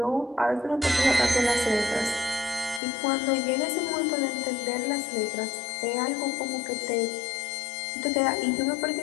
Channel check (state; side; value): drops out; right; at 2.8 s